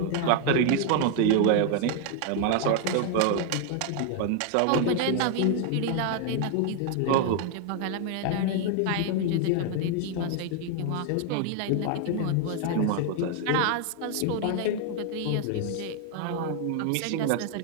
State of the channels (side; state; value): both; different; correlation 0.00